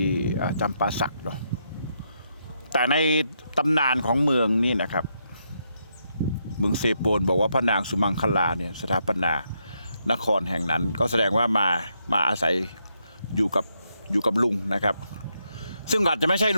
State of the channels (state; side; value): inverted; both; correlation -0.79